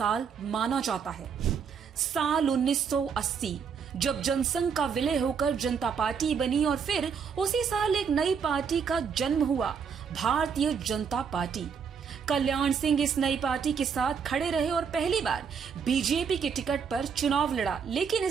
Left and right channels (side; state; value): left; quieter; 6.5 dB